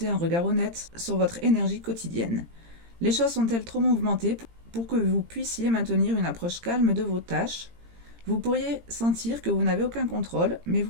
un regard honnête sur votre énergie quotidienne. Les choses sont-elles trop mouvementées pour que vous puissiez maintenir une approche calme de vos tâches ? Vous pourriez sentir que vous n'avez aucun contrôle, mais vous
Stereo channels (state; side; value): late; left; 18 ms